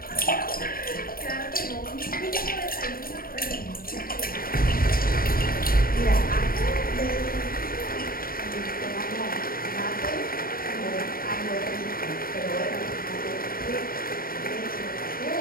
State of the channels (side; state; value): right; late; 0.42 ms